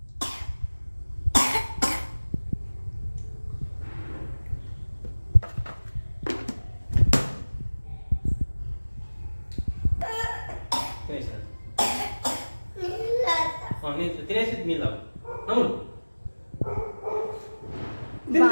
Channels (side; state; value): both; inverted; correlation -1.00